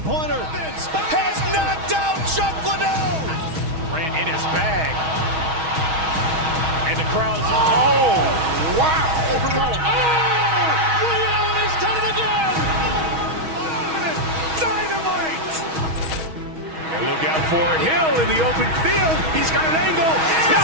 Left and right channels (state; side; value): late; left; 6.3 ms